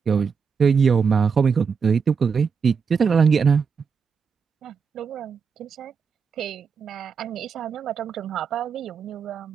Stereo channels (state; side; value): quieter; left; 5.9 dB